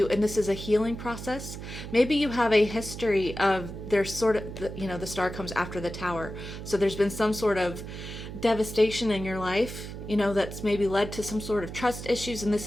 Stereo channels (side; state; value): right; noise; hum, 9 dB below the sound